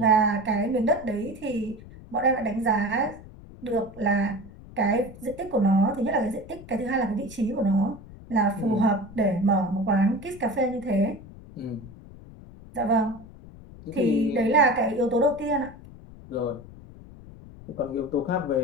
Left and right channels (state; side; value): noise; left; rumble, 18 dB below the sound